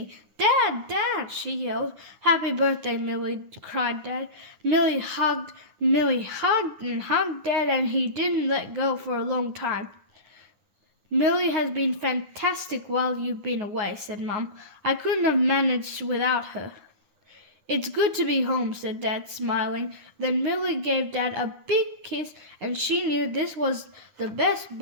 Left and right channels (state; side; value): late; left; 9.8 ms